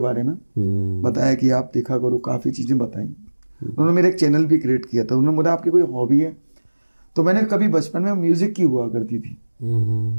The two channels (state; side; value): inverted; both; correlation -1.00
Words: में बताया कि आप देखा करो, काफ़ी चीज़ें बताई। उन्होंने मेरा एक चैनल भी क्रिएट किया था। उन्होंने बोला आपकी कोई हॉबी है? तो मैंने कभी बचपन में म्यूजिक की हुआ करती थी,